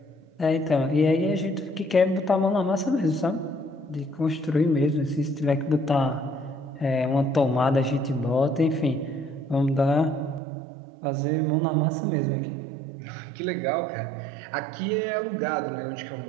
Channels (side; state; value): left; drops out; at 10.4 s